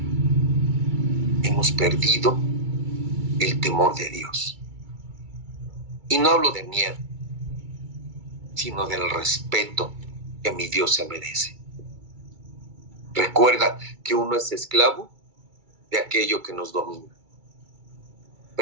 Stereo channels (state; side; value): late; left; 2.3 ms